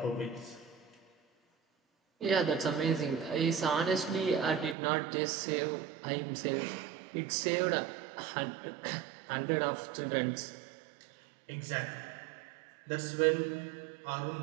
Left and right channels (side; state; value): left; drops out; at 4.8 s